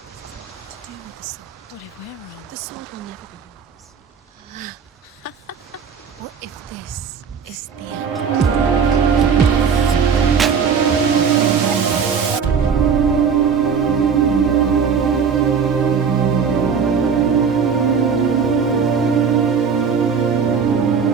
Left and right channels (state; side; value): quieter; left; 6.3 dB